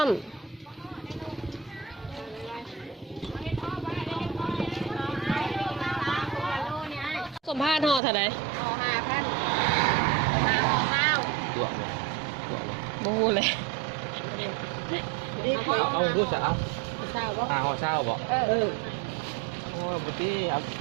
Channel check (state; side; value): drops out; left; at 8.0 s